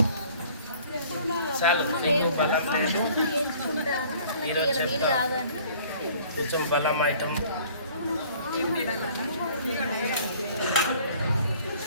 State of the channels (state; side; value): inverted; both; correlation -0.53